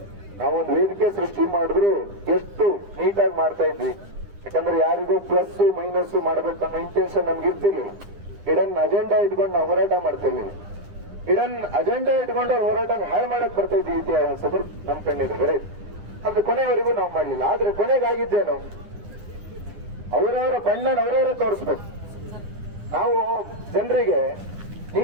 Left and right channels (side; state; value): left; late; 9.9 ms